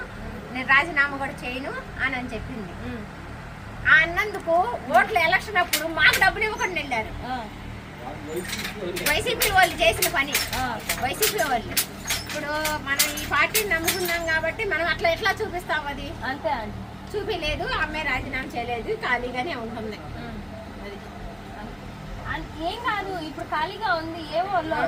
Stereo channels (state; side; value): identical; both; correlation 1.00